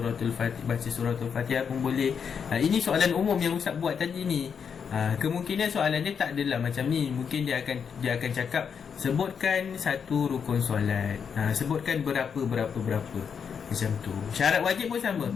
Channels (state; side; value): quieter; right; 6.8 dB